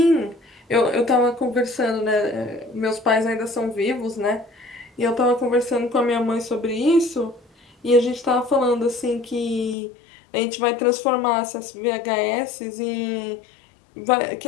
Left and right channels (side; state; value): right; drops out; at 9.8 s